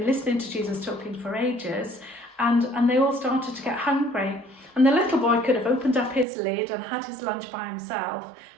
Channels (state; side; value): drops out; left; at 6.2 s